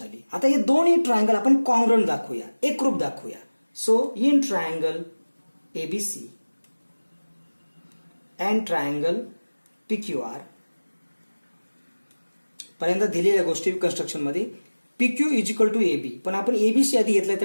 आता हे दोन्ही ट्रायंगल आपण कॉंग्रंट दाखवूया, एकरूप दाखवूया. So in triangle ABC and triangle PQR, पहिल्यांदा दिलेल्या गोष्टी कन्स्ट्रक्शनमध्ये PQ is equal to AB, पण आपण एबीसी आधी घेतलाय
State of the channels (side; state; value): both; inverted; correlation -1.00